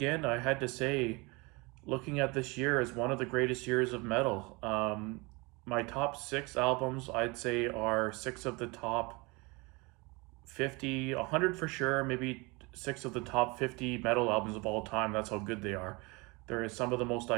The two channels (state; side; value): quieter; left; 26.6 dB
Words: I had to say, looking at this year as one of the greatest years of metal. My top 6 albums, I'd say, are 6 of the top 50, 100 for sure, maybe 6 of the top 50 metal albums of all time. That's how good they are. There is some of the most